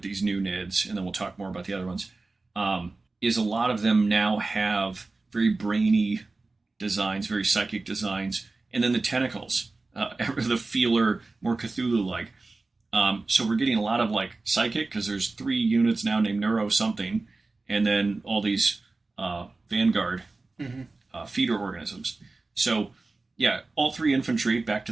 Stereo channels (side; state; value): left; quieter; 3.5 dB